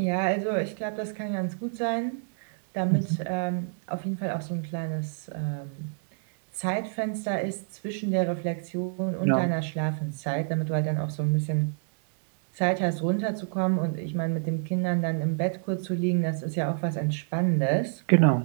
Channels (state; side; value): silent; left; digital silence